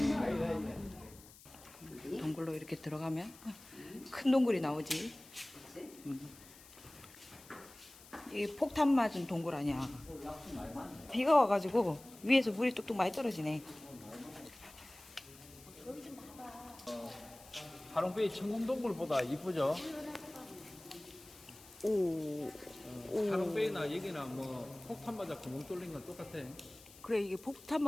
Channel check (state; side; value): noise; left; hiss, 20 dB below the sound